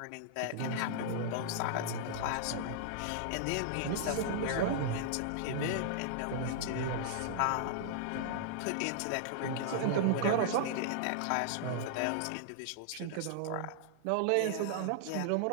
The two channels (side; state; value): both; different; correlation -0.01